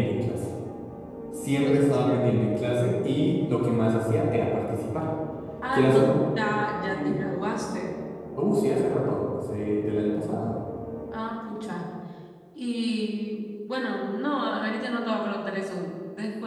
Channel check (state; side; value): identical; both; correlation 1.00